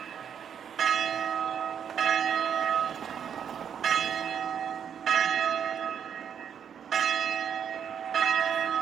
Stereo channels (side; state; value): left; quieter; 8.1 dB